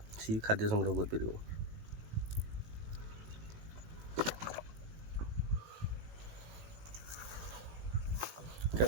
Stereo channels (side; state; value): left; late; 18 ms